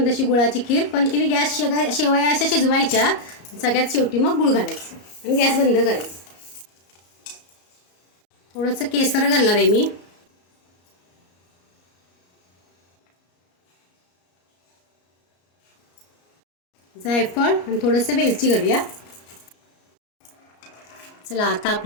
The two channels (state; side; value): late; right; 34 ms